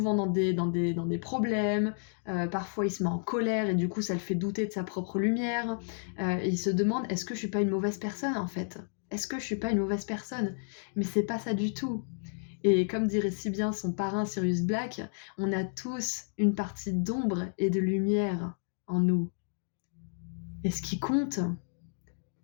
dans des problèmes, parfois il se met en colère et du coup ça le fait douter de sa propre lumière, et il se demande est-ce que je suis pas une mauvaise personne en fait? Est-ce que je suis pas une mauvaise personne? Mais c'est pas ça du tout. Et comme dirait si bien son parrain Sirius Black, on a tous une partie d'ombre et de lumière en nous. Et ce qui compte,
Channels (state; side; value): silent; right; digital silence